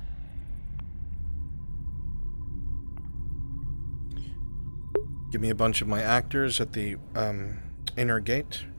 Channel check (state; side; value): inverted; both; correlation -1.00